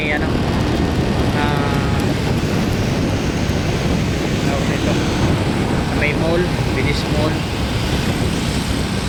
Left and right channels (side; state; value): both; identical; correlation 1.00